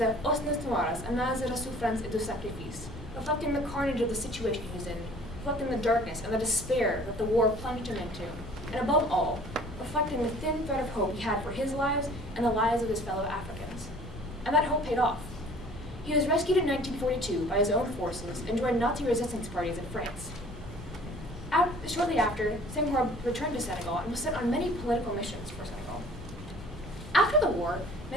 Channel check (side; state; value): both; normal; correlation 0.50